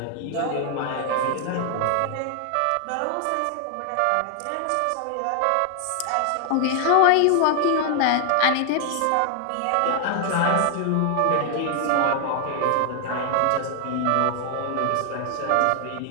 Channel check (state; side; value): different; both; correlation 0.00